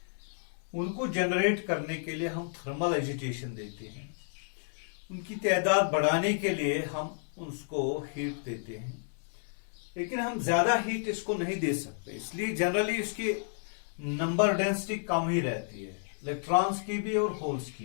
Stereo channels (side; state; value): right; silent; 57 dB below the other